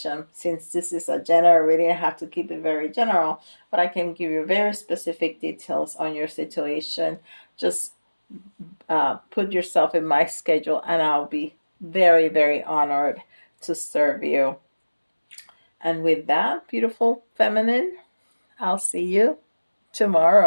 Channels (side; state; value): both; inverted; correlation -1.00